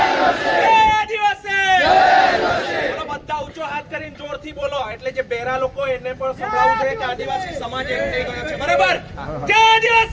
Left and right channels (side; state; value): both; identical; correlation 1.00